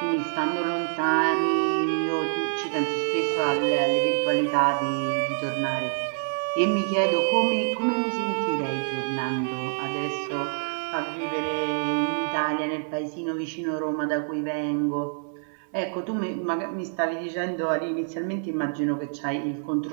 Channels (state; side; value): silent; left; 56 dB below the other